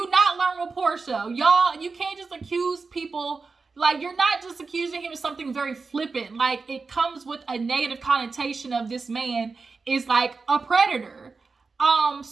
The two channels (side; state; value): left; quieter; 4.4 dB